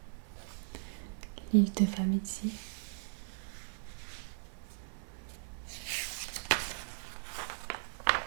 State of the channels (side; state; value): left; silent; 53 dB below the other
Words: l'île de Famizzi,